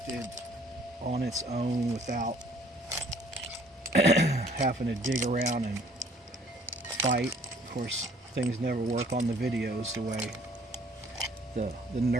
on its own without having to dig around and fight. Of course, things never work on the videos the way the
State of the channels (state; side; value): normal; both; correlation 0.58